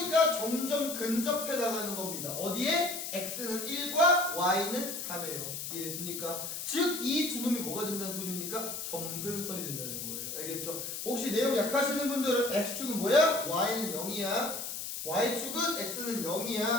점점 근접해 나가는 겁니다. 어디에? x는 1과 y는 3이에요. 이해됐습니까? 즉, 이 두 놈이 뭐가 된다는 소리입니까? 점근선이 된다는 거예요. 알겠죠? 혹시 내용 약하시는 분들은 x축은 뭐야? y는 0이야. y축은 x는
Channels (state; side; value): noise; left; hiss, 5 dB below the sound